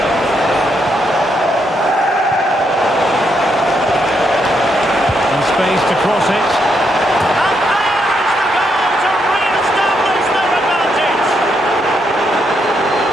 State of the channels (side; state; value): both; normal; correlation 0.78